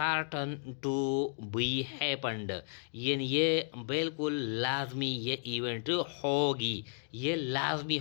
टू बी हैपन्ड, यानी ये बिल्कुल लाजमी ये इवेंट होगी, ये लाजमी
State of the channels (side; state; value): right; silent; digital silence